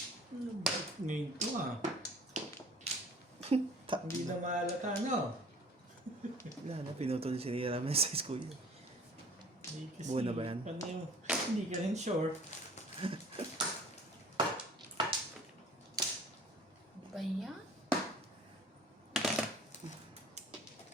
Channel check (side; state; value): both; normal; correlation 0.49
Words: ba? Ngayon to ah. Hindi na mahalata, no? Wala na, pinutol si Nira Ramen sa school. Hindi kasi, Buo na ba yan? Paano yung, hindi ka rin sure. Ba yan?